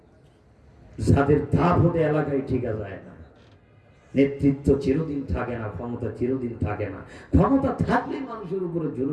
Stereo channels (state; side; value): identical; both; correlation 1.00